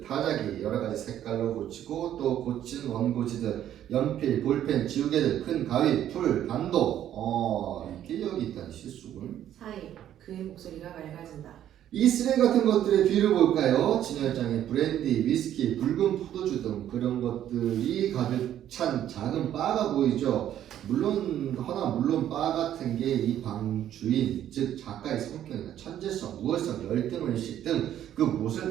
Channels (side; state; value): left; quieter; 11.2 dB